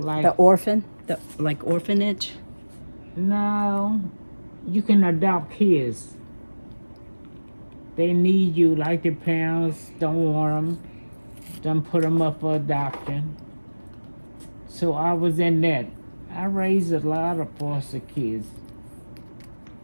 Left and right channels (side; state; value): both; inverted; correlation -1.00